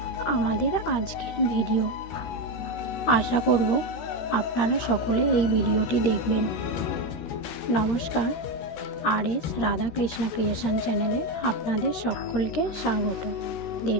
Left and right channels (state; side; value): late; right; 13 ms